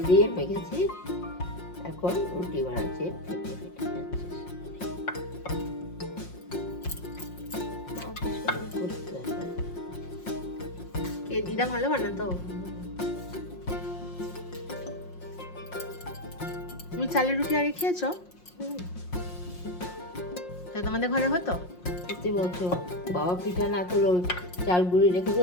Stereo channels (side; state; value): right; late; 5.6 ms